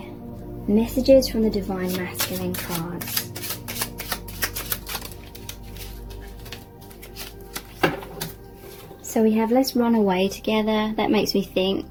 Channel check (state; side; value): identical; both; correlation 1.00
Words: messages from the Divine Masculine cards. So we have let's run away together. That makes me